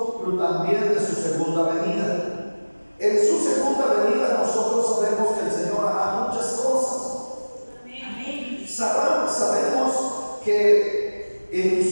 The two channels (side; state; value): both; inverted; correlation -1.00